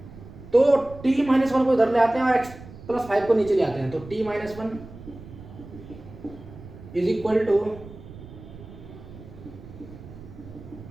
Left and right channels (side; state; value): right; noise; rumble, 16 dB below the sound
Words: तो t-1 को इधर ले आते हैं और x+5 को नीचे ले आते हैं, तो t-1 is equal to